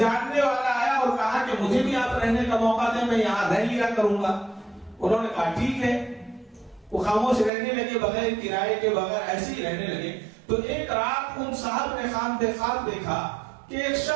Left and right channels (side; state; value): left; drops out; at 7.5 s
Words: والا آیا اور کہا کہ مجھے بھی آپ رہنے کا موقع دیں، میں یہاں رہ لیا کروں گا۔ انہوں نے کہا ٹھیک ہے۔ وہ خاموش رہنے لگے، بغیر کرائے کے، بغیر ایسے ہی رہنے لگے۔ تو ایک رات ان صاحب نے خواب دیکھا کہ ایک